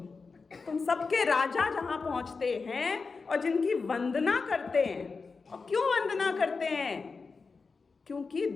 तुम सबके राजा जहां पहुंचते हैं और जिनकी वंदना करते हैं। और क्यों वंदना करते हैं? क्योंकि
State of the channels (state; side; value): quieter; right; 4.6 dB